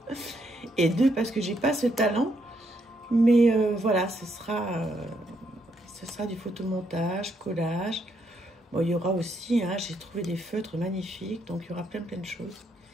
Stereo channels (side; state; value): both; normal; correlation 0.76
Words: Et 2, parce que j'ai pas ce talent. Mais voilà, ce sera du photomontage, collage. Bon, il y aura aussi, hein, j'ai trouvé des feutres magnifiques, donc il y aura plein de choses.